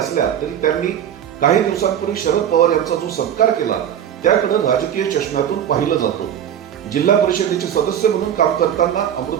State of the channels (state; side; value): quieter; left; 9.7 dB